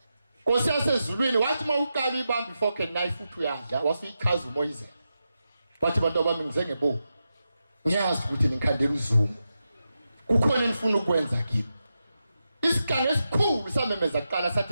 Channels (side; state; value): both; inverted; correlation -0.89